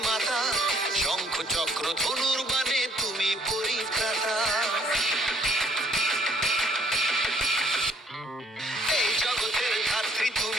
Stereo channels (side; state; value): both; normal; correlation 0.63